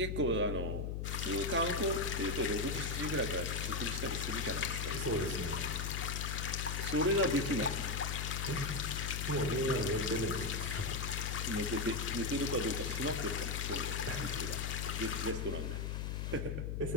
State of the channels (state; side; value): noise; left; hum, 2 dB below the sound